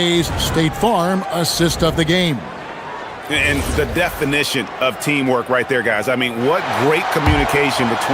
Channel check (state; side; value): identical; both; correlation 1.00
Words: State Farm assist of the game. And the definition of teamwork right there, guys. I mean, what great communication